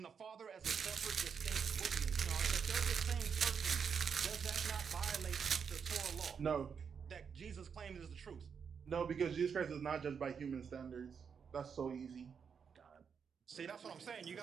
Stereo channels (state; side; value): quieter; left; 6.6 dB